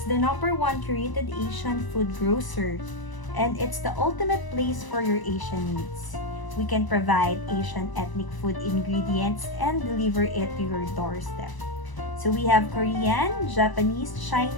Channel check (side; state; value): right; late; 1.0 ms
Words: the #1 curated Asian food grocer, and it's the ultimate place for your Asian needs. We can provide Asian ethnic food ingredients and deliver it to your doorstep. So we have Korean, Japanese,